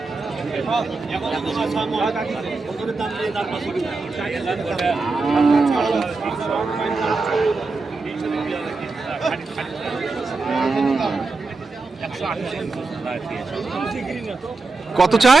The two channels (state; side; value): quieter; left; 3.8 dB